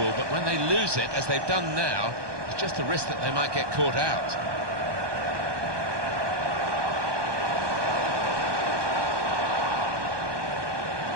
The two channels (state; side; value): late; left; 1.2 ms